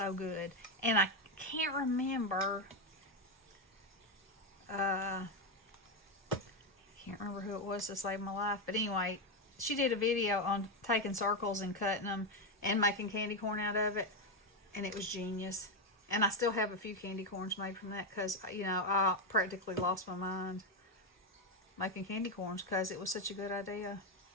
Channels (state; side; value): normal; both; correlation 0.07